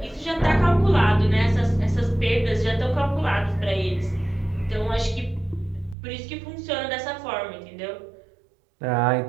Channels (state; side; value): drops out; left; at 6.0 s